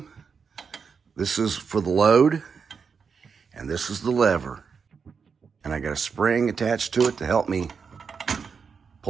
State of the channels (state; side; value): quieter; left; 5.8 dB